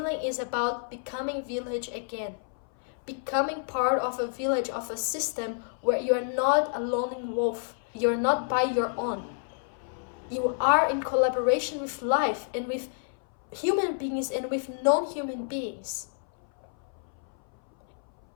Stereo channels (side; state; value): right; silent; 58 dB below the other